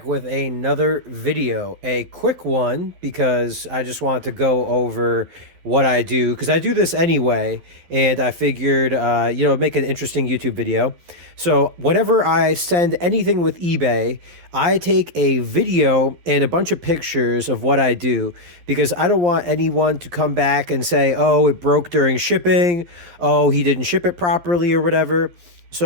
with another video. A quick one because I just wanted to go over what I do because I do this anyway, and I figured, make an interesting YouTube video. So, whenever I send anything with eBay, I take a video and a bunch of pictures of what I do because I don't want anyone to come back and say, oh, it broke during shipping, oh, he didn't ship it properly, or whatever.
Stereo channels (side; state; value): left; late; 11 ms